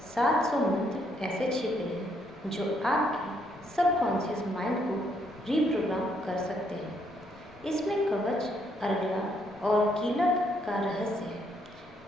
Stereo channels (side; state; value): left; noise; rumble, 26 dB below the sound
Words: 700 मंत्र ऐसे छिपे हैं जो आपके सबकॉन्शियस माइंड को रीप्रोग्राम कर सकते हैं। इसमें कवच, अर्गला और कीलक का रहस्य है।